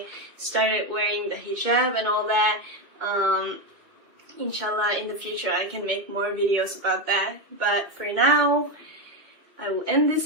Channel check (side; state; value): left; late; 2.1 ms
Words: started wearing the hijab and all that. Inshallah in the future I can make more videos about that, but for now I will end